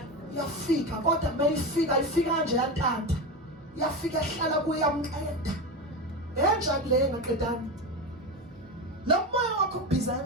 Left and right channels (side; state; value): both; normal; correlation 0.20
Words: Yafika kodwa mayifika ifika nje yantanta. Yafika ehlala kuyamqeda. Enjani le ngaqedani? Lo moya wakho ubhiza